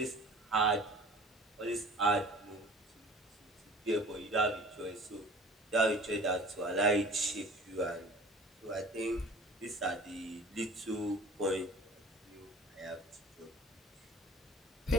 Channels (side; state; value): both; normal; correlation 0.45